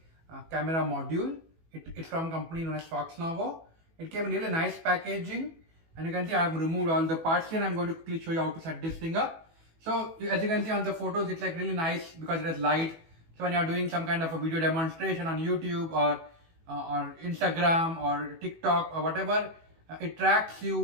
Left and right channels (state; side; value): late; left; 18 ms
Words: camera module. It's from a company known as Foxnovo. It came in really nice packaging, and you can see I've removed all the parts here. I'm going to quickly show you how to set this thing up. So as you can see on the photos, it's like really nice because it has light. So when you're doing some kind of a video demonstration on YouTube or Instagram or TikTok or whatever, it tracks